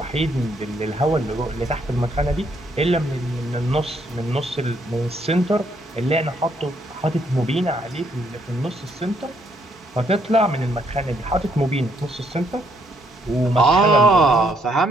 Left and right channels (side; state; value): both; normal; correlation 0.71